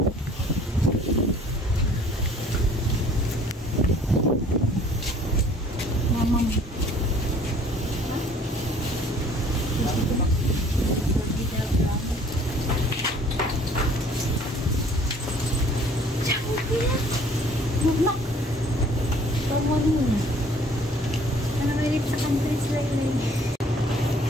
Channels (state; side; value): normal; both; correlation 0.55